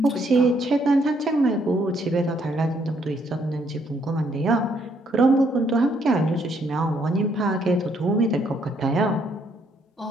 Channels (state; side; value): normal; both; correlation 0.70